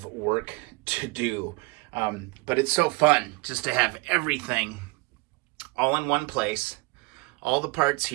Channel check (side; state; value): left; quieter; 25.5 dB